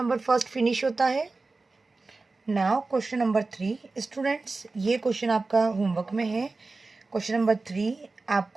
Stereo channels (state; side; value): quieter; left; 3.6 dB